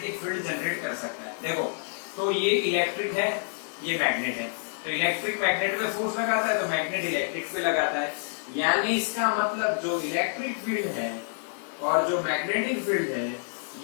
field generate कर सकता है। देखो, तो ये इलेक्ट्रिक है, ये मैग्नेट है, तो इलेक्ट्रिक मैग्नेट पे फोर्स लगाता है, तो मैग्नेट इलेक्ट्रिक पे लगाता है। यानी इसका मतलब जो इलेक्ट्रिक फील्ड है और जो मैग्नेटिक फील्ड है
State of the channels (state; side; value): silent; right; 56 dB below the other